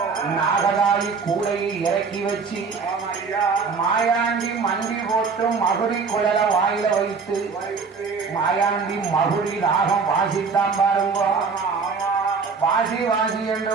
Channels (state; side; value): quieter; left; 5.0 dB